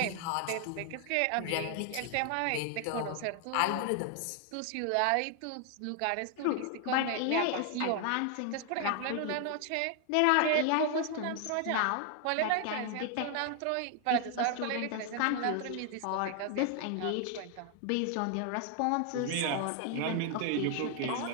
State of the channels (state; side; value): different; both; correlation 0.00